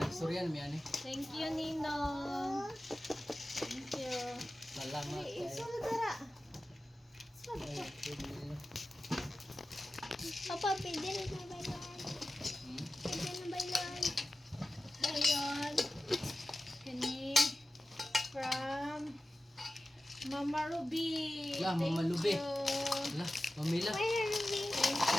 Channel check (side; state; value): both; normal; correlation 0.95